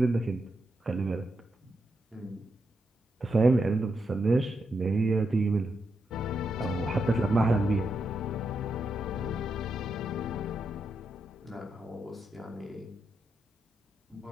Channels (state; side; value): normal; both; correlation 0.84